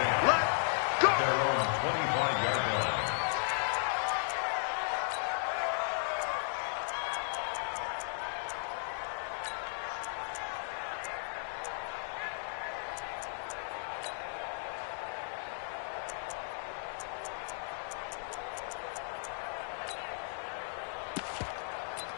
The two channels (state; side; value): silent; right; digital silence